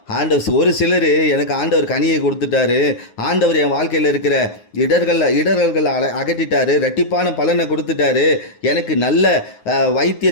ஆண்டவர் ஒரு சிலர் எனக்கு ஆண்டவர் கனியை கொடுத்துட்டாரு, ஆண்டவர் என் வாழ்க்கையில் இருக்கிற இடர்கள் அகற்றிட்டாரு, ரெட்டிப்பான பலனை கொடுத்துட்டாரு, எனக்கு நல்ல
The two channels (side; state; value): right; late; 9.6 ms